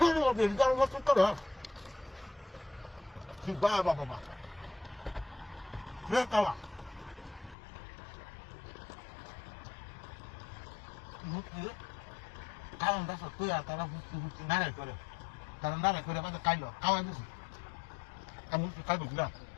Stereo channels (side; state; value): right; drops out; at 7.6 s